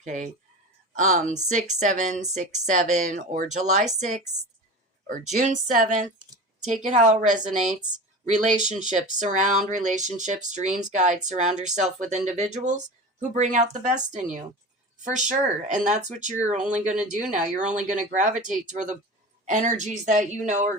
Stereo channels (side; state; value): both; normal; correlation 0.31